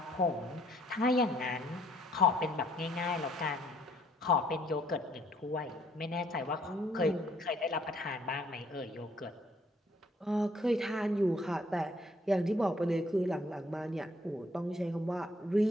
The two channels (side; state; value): both; normal; correlation 0.64